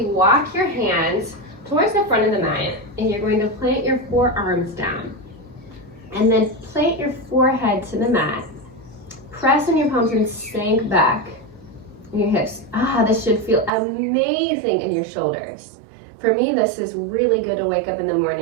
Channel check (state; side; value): drops out; left; at 13.7 s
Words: walk your hands towards the front of the mat, and you're going to plant your forearms down. And then plant your forehead to the mat. Press on your palms and sink back in your hips. This should feel amazing in your shoulders. For me, this is really good to wake up in the